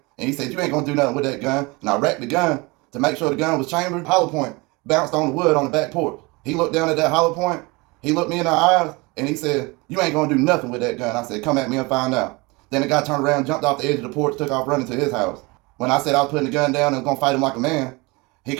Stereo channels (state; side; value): quieter; left; 25.5 dB